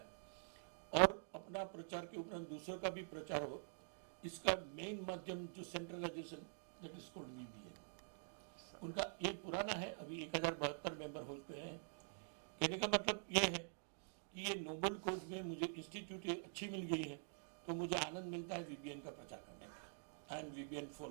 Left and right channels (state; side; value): silent; left; digital silence